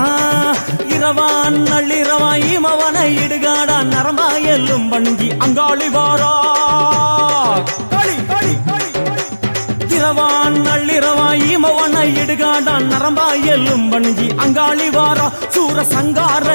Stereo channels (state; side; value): inverted; both; correlation -1.00